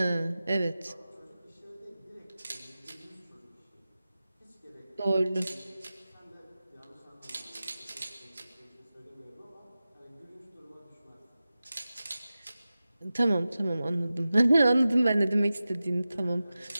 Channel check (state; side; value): inverted; both; correlation -0.94